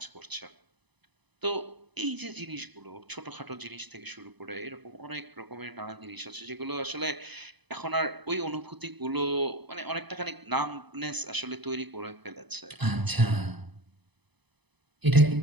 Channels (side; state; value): left; late; 0.99 ms